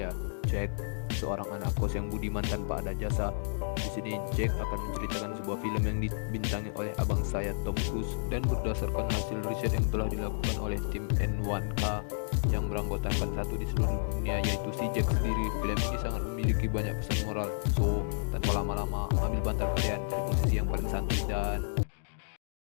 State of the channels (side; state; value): right; silent; digital silence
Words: Jack, seorang anak kos yang budiman tanpa ada jasa. Di sini Jack akan menceritakan sebuah film yang dibintangi oleh abang saya Tom Cruise dan berdasarkan hasil riset yang telah dilakukan oleh tim N1K yang beranggotakan satu di seluruh dunia, yaitu si Jack sendiri. Film ini sangat memiliki banyak pesan moral. So, tanpa lama-lama, ambil bantal kalian, cari posisi yang paling santai dan